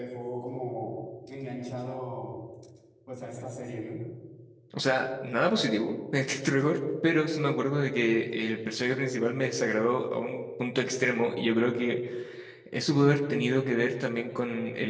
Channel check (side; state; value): both; identical; correlation 1.00